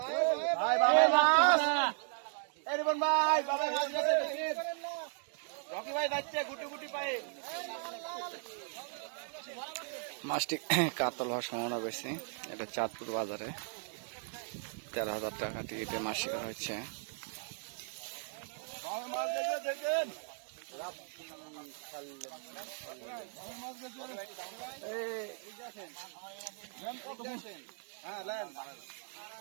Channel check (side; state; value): left; silent; 53 dB below the other